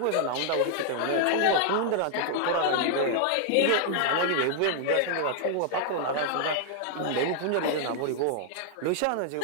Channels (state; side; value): different; both; correlation -0.01